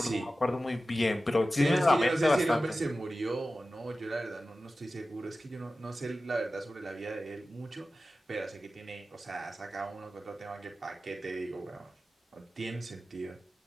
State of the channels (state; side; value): normal; both; correlation 0.95